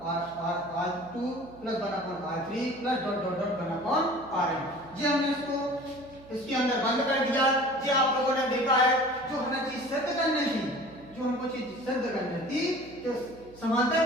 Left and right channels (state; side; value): noise; right; hum, 23 dB below the sound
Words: plus 1/R3 plus dot dot dot 1/RN। ये हमने इसको इसके अंदर बंद कर दिया। ये आप लोगों ने देखा है जो हमें चीज सिद्ध करनी थी, जो हमको चीज सिद्ध करनी थी कि समांतर